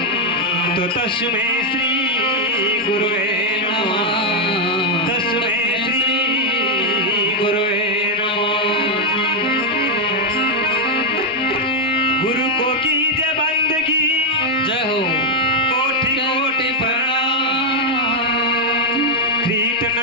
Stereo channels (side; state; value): both; normal; correlation 0.00